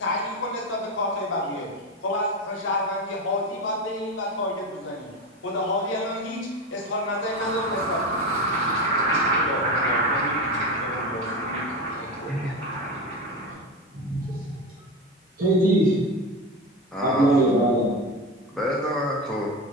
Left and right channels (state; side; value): normal; both; correlation 0.21